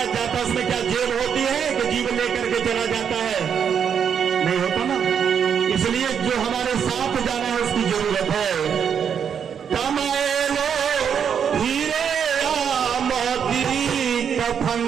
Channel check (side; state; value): left; quieter; 7.6 dB